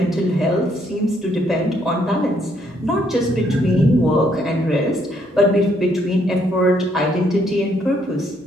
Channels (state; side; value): normal; both; correlation 0.70